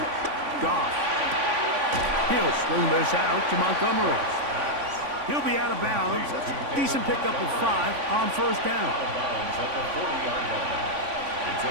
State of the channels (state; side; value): late; left; 3.5 ms